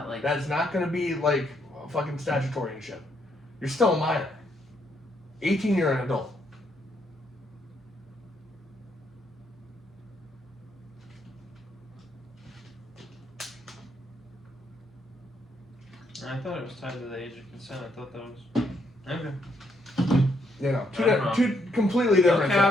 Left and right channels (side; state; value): both; normal; correlation 0.74